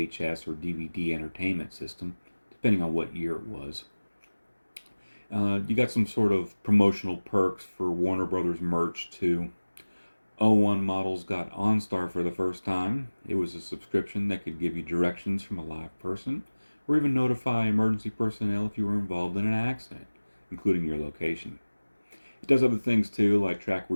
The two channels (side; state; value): both; inverted; correlation -1.00